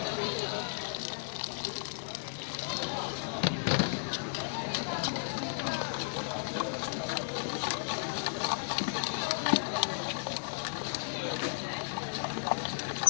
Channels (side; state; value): right; silent; 55 dB below the other